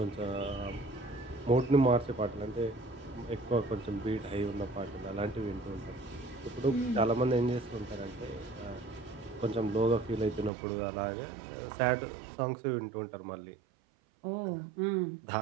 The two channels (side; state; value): left; drops out; at 10.5 s